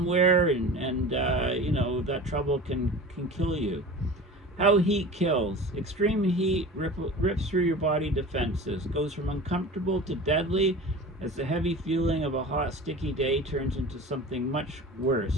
and you know, that trouble can kill you. How heat kills. Extreme heat rips through your body defenses, goes from uncomfortable to deadly as the heavy feeling of a hot, sticky day turns into something much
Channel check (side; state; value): both; normal; correlation 0.36